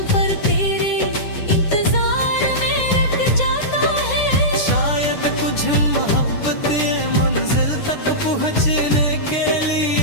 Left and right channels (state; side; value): late; right; 9.9 ms